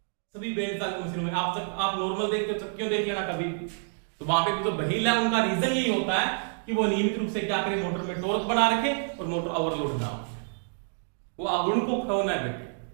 सभी बेल्ट चालित मशीनों में। आप नॉर्मल देखते हो चक्कियों देख लेना कभी, तो वहां पे जो व्हील है उनका रीजन यही होता है कि वो नियमित रूप से क्या करें, मोटर में टॉर्क बना रखे और मोटर ओवरलोड ना हो, वो अगुण को खोना बैठे।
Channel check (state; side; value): silent; left; digital silence